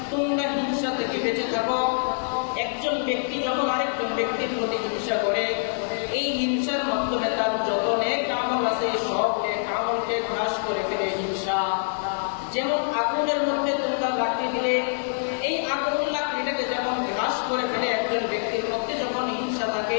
তোমরা হিংসা থেকে বেঁচে থাকো। একজন ব্যক্তি যখন আরেকজন ব্যক্তির প্রতি হিংসা করে এই হিংসার মাধ্যমে তার যত নেক আমল আছে সব নেক আমলকে গ্রাস করে ফেলে হিংসা। যেমন আগুনের মধ্যে তোমরা লাকড়ি দিলে এই আগুন লাকড়িটাকে যেমন গ্রাস করে ফেলে একজন ব্যক্তির মধ্যে যখন হিংসা থাকে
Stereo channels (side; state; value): right; silent; digital silence